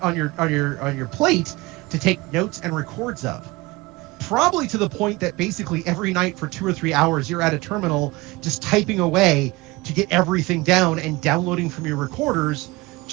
your plate to take notes and records of. Probably to the point that basically every night for 2 or 3 hours you're at a terminal just typing away to get everything down and downloading from your recorders,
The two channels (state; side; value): quieter; left; 22.2 dB